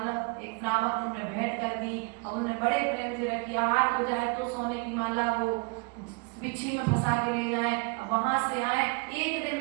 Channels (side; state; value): left; quieter; 31.8 dB